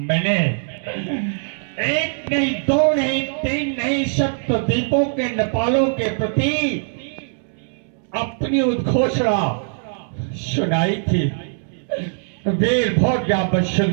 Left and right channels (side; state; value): left; silent; 65 dB below the other